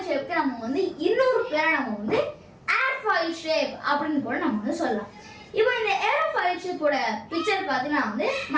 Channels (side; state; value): both; identical; correlation 1.00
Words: ஷேப்க்கு நம்ம வந்து இன்னொரு பேரை நம்ம வந்து ஏர்ஃபாயில் ஷேப் அப்படின்னு கூட நம்ம வந்து சொல்லலாம். இப்போ இந்த ஏரோஃபாயில் ஷேப்போட பிக்சர் பார்த்தீங்கன்னா வந்து